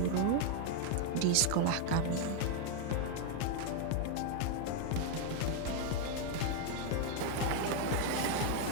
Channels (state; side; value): different; both; correlation 0.00